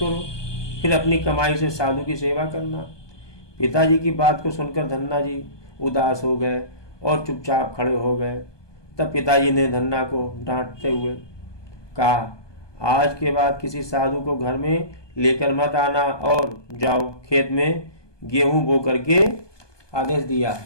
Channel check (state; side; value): late; right; 1.2 ms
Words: फिर अपनी कमाई से साधु की सेवा करना। पिताजी की बात को सुनकर धन्ना जी उदास हो गए और चुपचाप खड़े हो गए। तब पिताजी ने धन्ना को डांटते हुए कहा, आज के बाद किसी साधु को घर में लेकर मत आना और जाओ खेत में गेहूं बो करके, आदेश दिया,